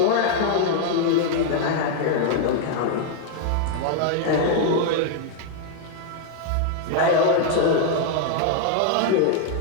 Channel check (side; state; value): both; different; correlation 0.00